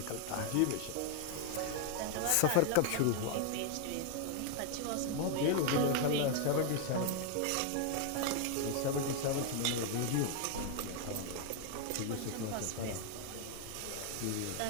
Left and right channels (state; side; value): different; both; correlation 0.00